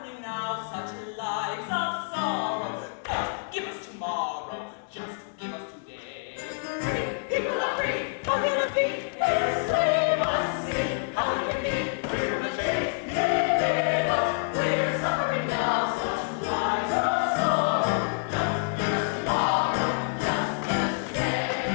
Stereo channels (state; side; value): silent; right; digital silence